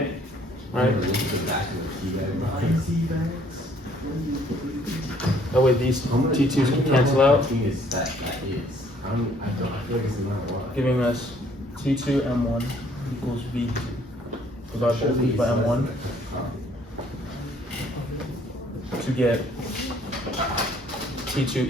right? That way these T2s can cancel out, giving us T2 M1 equals V2. Divide both these by M1 to get T2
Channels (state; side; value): normal; both; correlation 0.61